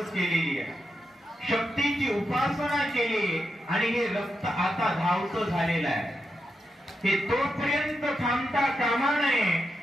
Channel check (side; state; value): both; normal; correlation 0.86